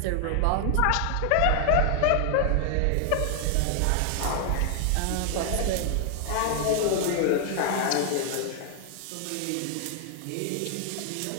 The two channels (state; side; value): different; both; correlation 0.00